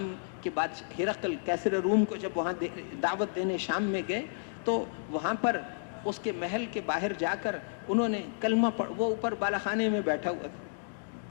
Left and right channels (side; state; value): right; silent; digital silence